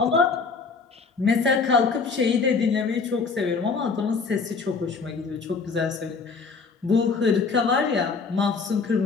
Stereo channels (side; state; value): right; quieter; 4.8 dB